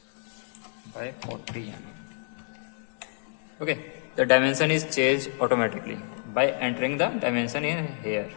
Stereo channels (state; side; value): silent; right; digital silence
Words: by 40 mm. Okay, the dimension is changed automatically by entering the dimension in here.